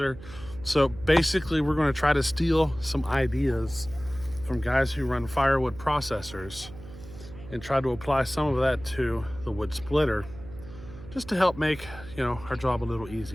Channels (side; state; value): right; noise; hum, 16 dB below the sound